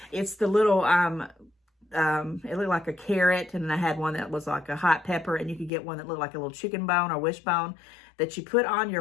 It's the little, it looked like a carrot, and then I had one that was like a hot pepper, and you could get one that looked like a little chicken bone or wishbone that you put on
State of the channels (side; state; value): right; drops out; at 5.7 s